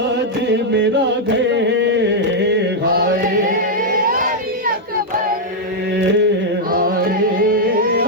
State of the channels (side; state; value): both; normal; correlation -0.02